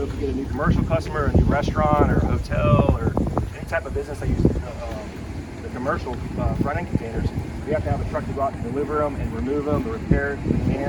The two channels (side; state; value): both; identical; correlation 1.00